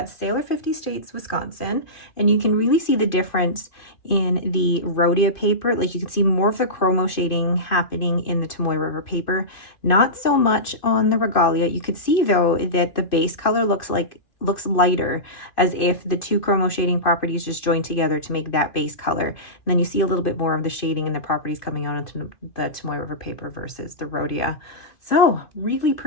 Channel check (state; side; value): late; right; 2.5 ms